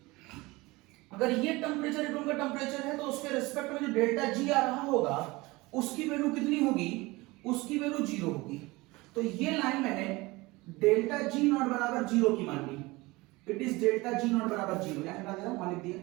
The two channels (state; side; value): quieter; left; 22.1 dB